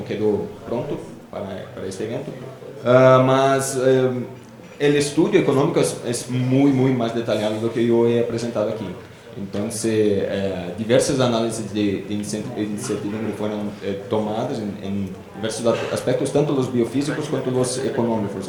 quedou pronto para este evento, mas o estudo econômico é muito mais detalhado do que eu he apresentado aqui. Então, diversas análises de incertidumbre foram tomadas em diversos aspectos, tanto os biofísicos quanto os econômicos.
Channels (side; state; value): both; identical; correlation 1.00